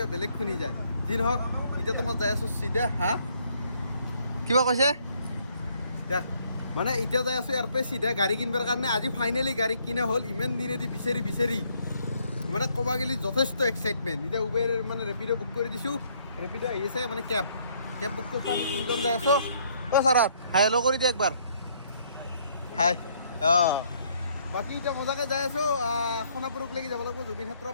বেলেগ শুনি যায় যি নহওক এতিয়া তোমাৰ যাই আছোঁ চিধা কিবা কৈছে দেখ মানে এতিয়া যাই আছোঁ ইয়াৰ পৰা চিধা গাড়ী কিনিবৰ কাৰণে আজি ফাইনেলি গাড়ী কিনা হ'ল ইমান দিনেদি বিচাৰি মানে ক'ব গ'লে যথেষ্ট এক্সাইটমেণ্ট এতিয়া উবেৰ মানে ৰেপিড' বুক কৰি দিছোঁ ৰেপিড' আহি আছে মানে কেব বুক কৰিছোঁ আমি তিনিজন যাই আছোঁ ছাৰাত হাই হেল্ল' কৰি দিয়ে একবাৰ হাই বাকী এতিয়া মজাকৈ যাই আছোঁ সোণাপুৰকলৈকে যাব লাগিব জুবিন ক্ষেত্ৰ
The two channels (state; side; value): inverted; both; correlation -0.67